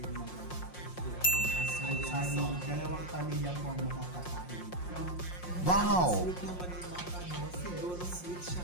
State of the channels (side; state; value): right; late; 5.6 ms